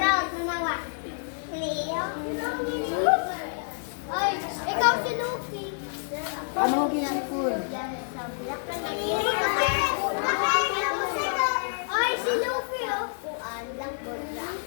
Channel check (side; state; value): right; silent; 59 dB below the other